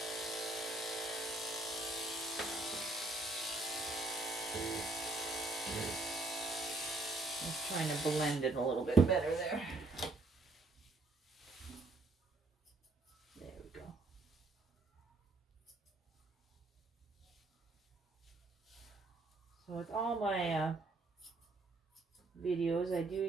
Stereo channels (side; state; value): left; quieter; 3.1 dB